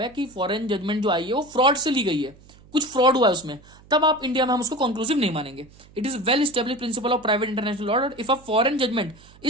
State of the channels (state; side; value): noise; right; hum, 25 dB below the sound